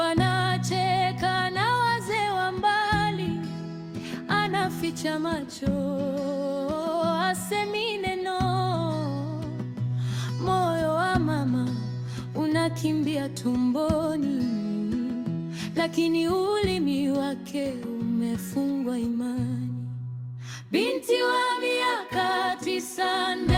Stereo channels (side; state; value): both; identical; correlation 1.00